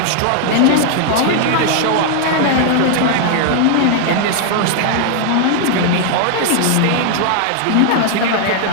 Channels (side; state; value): both; different; correlation 0.00